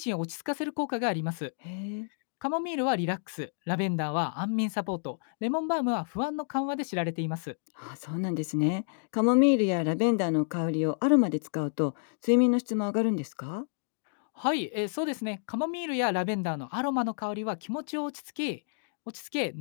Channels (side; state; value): right; silent; digital silence